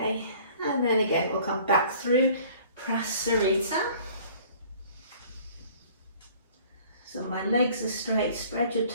and then again we'll come back through Prasarita. So my legs are straight, spread your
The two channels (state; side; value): inverted; both; correlation -0.52